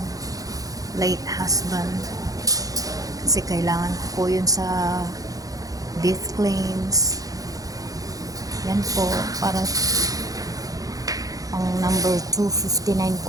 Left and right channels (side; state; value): left; late; 0.17 ms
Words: late husband. Kasi kailangan ko po yun sa death claims. Yan po, para ang number 259